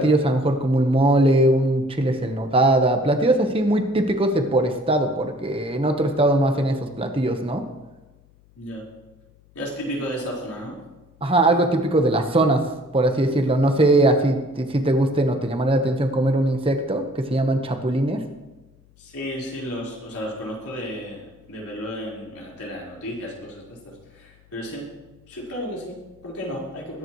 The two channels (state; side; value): noise; left; hum, 30 dB below the sound